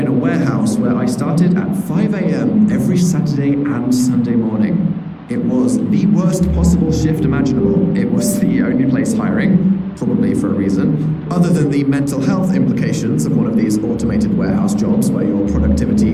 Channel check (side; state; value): both; identical; correlation 1.00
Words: a warehouse where I started at 5 a.m. every Saturday and Sunday morning. It was the worst possible shift imaginable. It was the only place hiring, probably for a reason, other than the mental health implications of one of these automated warehouse jobs where your